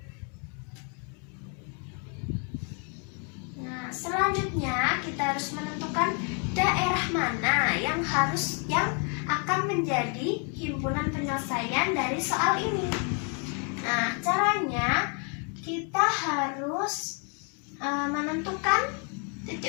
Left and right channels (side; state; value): right; quieter; 38.8 dB